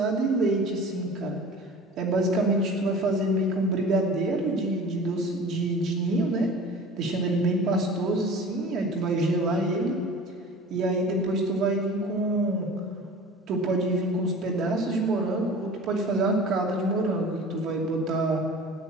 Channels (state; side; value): normal; both; correlation 0.40